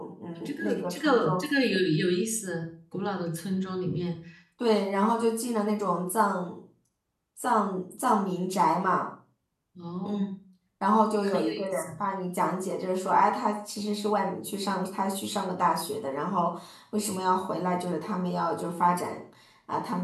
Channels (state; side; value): identical; both; correlation 1.00